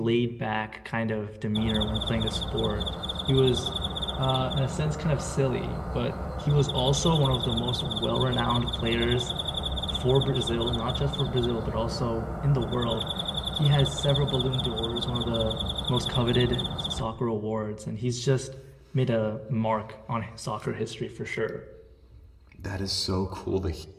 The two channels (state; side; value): identical; both; correlation 1.00